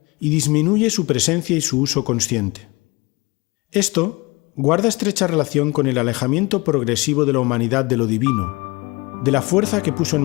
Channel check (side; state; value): right; quieter; 24.8 dB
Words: y disminuye su presencia y su uso consciente. Esto guarda estrecha relación con el alejamiento progresivo de la humanidad de lo divino, de la fuerza que puso en